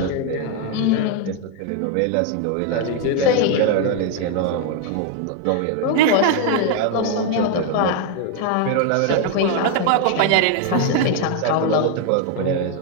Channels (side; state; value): both; different; correlation 0.01